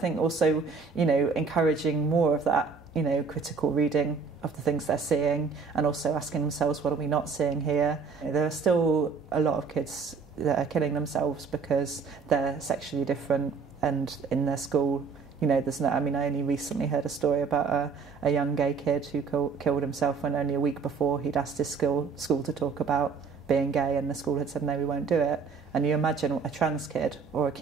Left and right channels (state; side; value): quieter; left; 5.1 dB